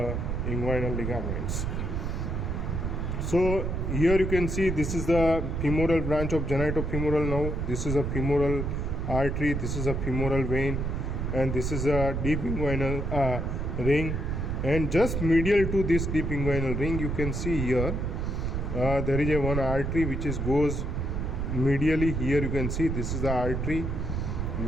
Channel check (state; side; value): noise; right; rumble, 1 dB below the sound